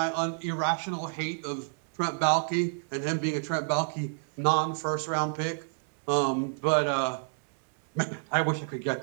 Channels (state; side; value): silent; left; digital silence